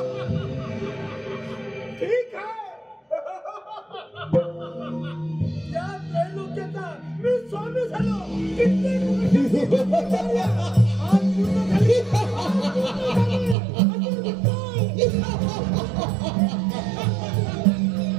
ठीक आहे. या त्रैलोक्याचा मी स्वामी झालो. कित्येक आज पूर्ण झाली.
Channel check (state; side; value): drops out; left; at 13.6 s